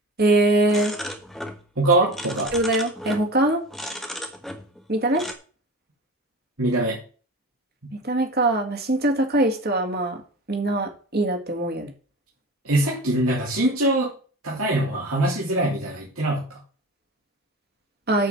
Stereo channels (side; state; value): both; normal; correlation 0.33